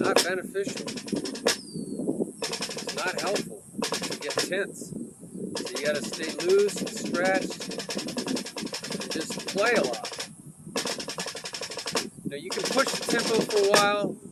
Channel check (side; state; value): both; identical; correlation 1.00